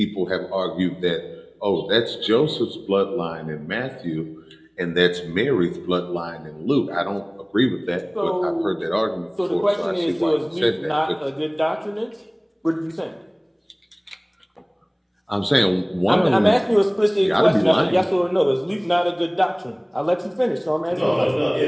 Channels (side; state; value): both; identical; correlation 1.00